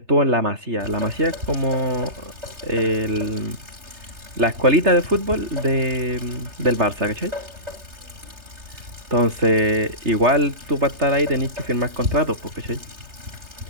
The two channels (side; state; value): left; late; 3.3 ms